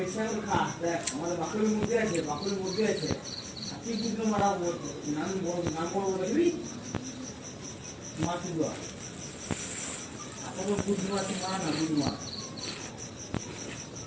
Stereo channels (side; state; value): both; identical; correlation 1.00